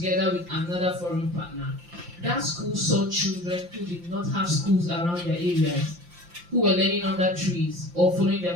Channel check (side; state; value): left; late; 5.8 ms